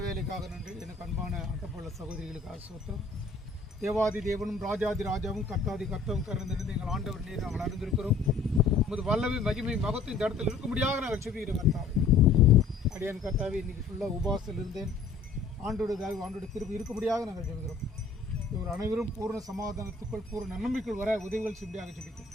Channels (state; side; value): quieter; right; 4.4 dB